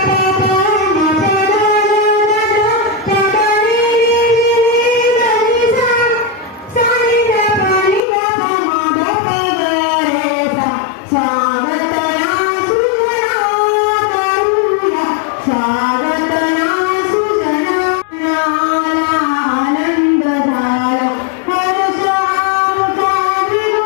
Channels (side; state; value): right; drops out; at 8.0 s